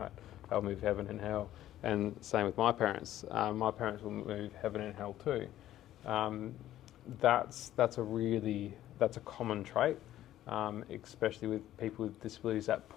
They'll move heaven and hell. And same with my parents. My parents will move heaven and hell too. That's a common trait, especially with people with disabilities that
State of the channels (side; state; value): right; quieter; 13.1 dB